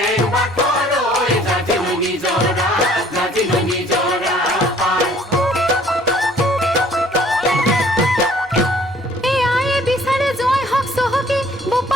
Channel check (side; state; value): both; normal; correlation 0.57